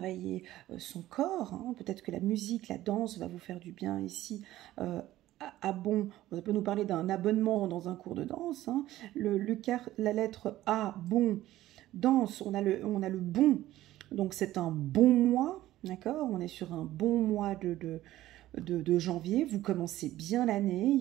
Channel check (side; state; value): left; quieter; 14.9 dB